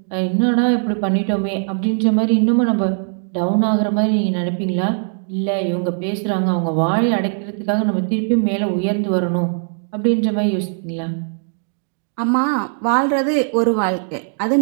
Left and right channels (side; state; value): left; silent; 66 dB below the other